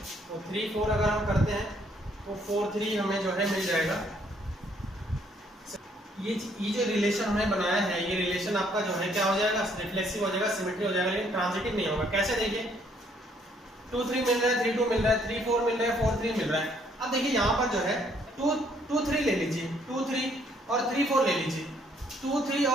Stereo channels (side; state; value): both; normal; correlation 0.66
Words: तो 3 4 अगर हम करते हैं तो 4 3 हमें जो है मिल जाएगा। ये जो रिलेशन हमने बनाया है, ये रिलेशन आपका जो है क्या हो जाएगा, रिफ्लेक्सिव हो जाएगा, सिमेट्री हो जाएगा, लेकिन ट्रांजिटिव नहीं होगा। कैसे, देखिए 2 3 मिल रहा है, 3 2 मिल रहा है, 3 4 मिल रहा है, 4 3 मिल रहा है। अब देखिए यहाँ पर जो है 2 3 ले लीजिए, 2 3 और 3 4 ले लीजिए। 2 3